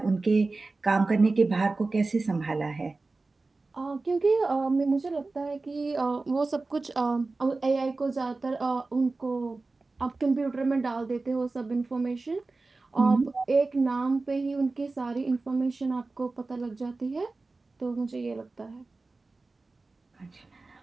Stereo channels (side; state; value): left; quieter; 3.5 dB